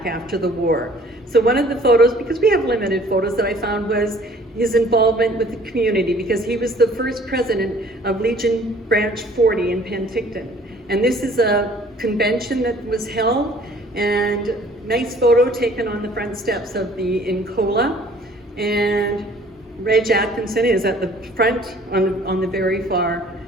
after the war. So one of the photos, because we have limited photos, that I found was his involvement with the community, because he was the first president of Legion Branch 40 in Penticton. And this is a convention that was held, and nice photo taken on the front steps of the Incola. And Reg Atkinson is at the front on the very far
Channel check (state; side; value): normal; both; correlation 0.54